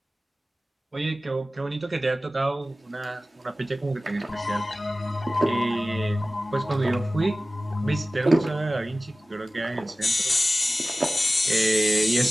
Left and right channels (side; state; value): both; normal; correlation 0.96